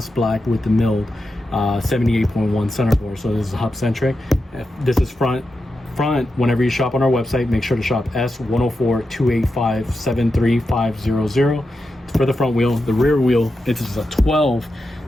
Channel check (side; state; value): both; normal; correlation 0.89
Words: black with the milled 78.1 center bore. So this is hub centric. This is front. Whenever you shop on our website, make sure to shop S10428573500 for the front wheel. The rear wheel, it is a 12,